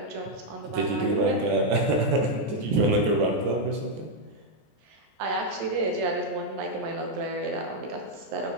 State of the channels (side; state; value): left; late; 14 ms